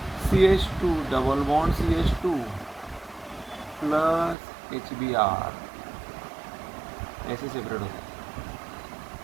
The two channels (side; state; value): left; drops out; at 4.4 s